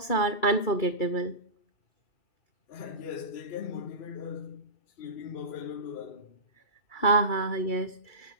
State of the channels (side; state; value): right; late; 2.6 ms